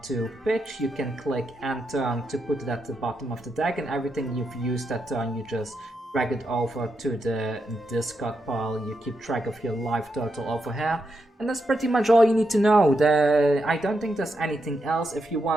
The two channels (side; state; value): both; normal; correlation 0.84